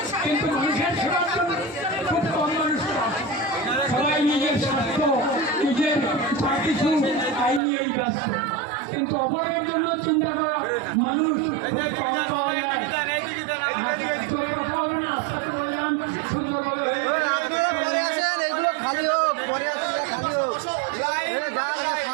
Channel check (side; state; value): left; drops out; at 7.6 s